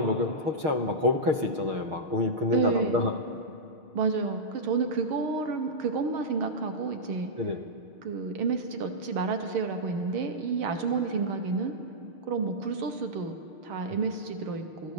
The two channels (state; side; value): late; left; 6.5 ms